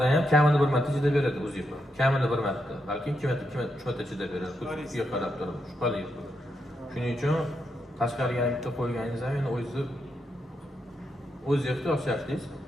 ham kamini bir marta chidab beradi uzib. Kamini bir marta, balki 2 marta, 3 marta chidab beradi. Kuchga qarab turib, shubhali. Shuning uchun tashqariga bitta qo'yganingiz ham endi o'z ehtiyoj shartingiz.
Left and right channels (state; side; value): normal; both; correlation 0.83